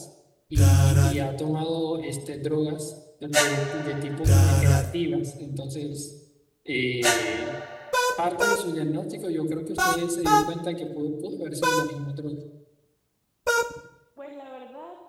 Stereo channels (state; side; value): identical; both; correlation 1.00